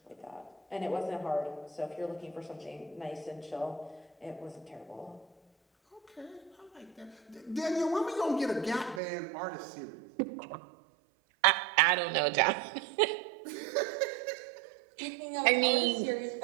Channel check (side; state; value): left; drops out; at 9.0 s